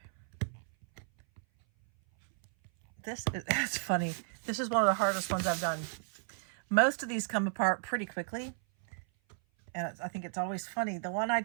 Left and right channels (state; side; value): silent; left; 55 dB below the other